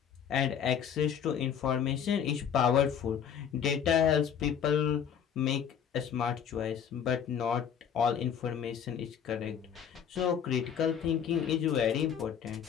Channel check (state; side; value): quieter; right; 8.2 dB